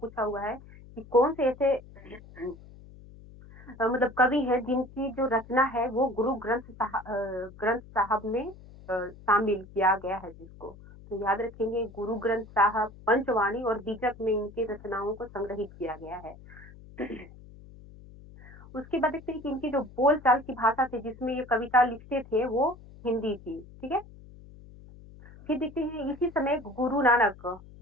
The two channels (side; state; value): left; noise; hum, 20 dB below the sound